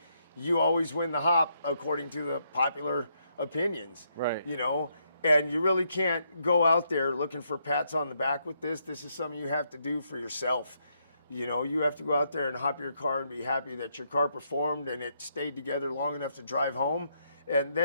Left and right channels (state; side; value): inverted; both; correlation -0.76